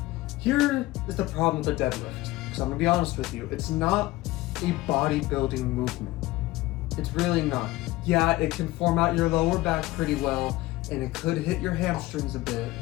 here is the problem with the deadlift. Because I'm going to be honest with you, it's not a bodybuilding movement. It's really not. Yeah, it can form out your lower back pretty well, and it could hit your hamstrings a bit.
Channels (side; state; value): right; quieter; 18.3 dB